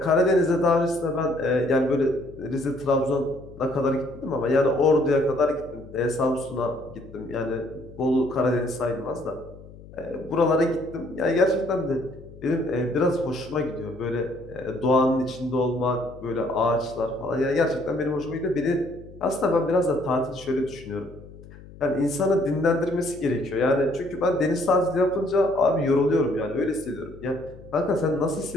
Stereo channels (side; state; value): left; noise; hum, 19 dB below the sound